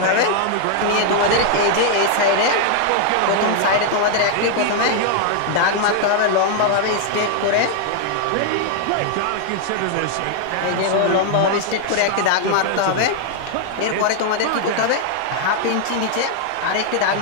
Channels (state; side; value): different; both; correlation 0.00